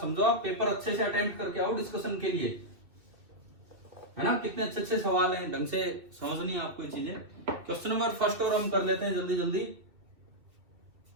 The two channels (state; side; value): late; left; 2.7 ms